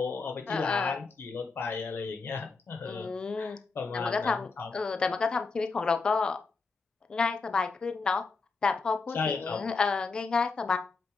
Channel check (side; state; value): right; quieter; 4.4 dB